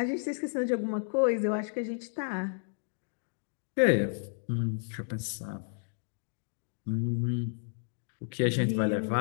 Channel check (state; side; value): silent; right; digital silence